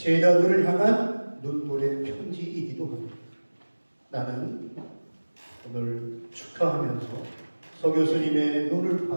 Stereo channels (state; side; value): inverted; both; correlation -1.00